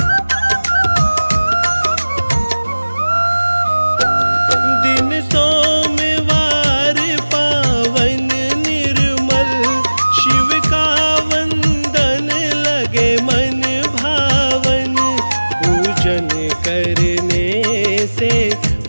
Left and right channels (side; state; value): both; inverted; correlation -1.00